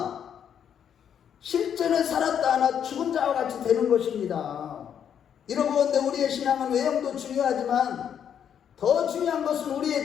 실제는 살았다 하나 죽은 자와 같이 되는 것입니다. 여러분, 우리의 신앙은 외형도 중요하지만 더 중요한 것은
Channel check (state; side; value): quieter; right; 8.6 dB